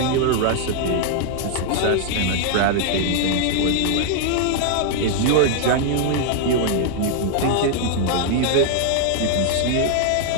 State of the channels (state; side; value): different; both; correlation 0.00